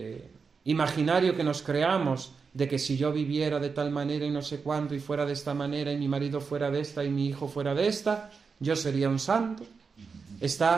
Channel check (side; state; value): left; quieter; 5.2 dB